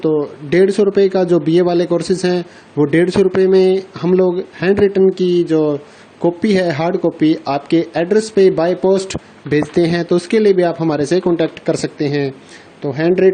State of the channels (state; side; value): identical; both; correlation 1.00